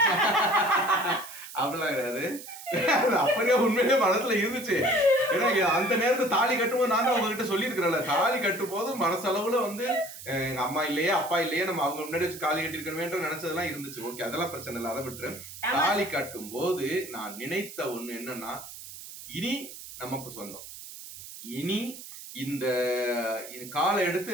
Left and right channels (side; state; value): right; noise; hiss, 13 dB below the sound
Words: அப்படிலாம் கிடையாது. அப்படியே உண்மையிலே மனசுல இருந்துச்சு. ஏன்னா அந்த நேரத்துல தாலி கட்டும்போது நான் தான் உங்ககிட்ட சொல்லியிருக்கிறேன்ல, தாலி கட்டும் போது மனசளவுல வந்து எங்க அம்மா இல்லையே அப்பா இல்லையே நம்ம அவங்க முன்னாடி வச்சு தாலி கட்டிருக்கணுமேன்ற நினைச்சதெல்லாம் இருந்துச்சு. ஓகே, அதெல்லாம் பிரச்சனை இல்லை, அதை விட்டுரு. தாலி கட்டும் போது நான் நினைத்த ஒண்ணு என்னன்னா, இனி நமக்கு சொந்தம். இனி இந்த காலை எடுத்து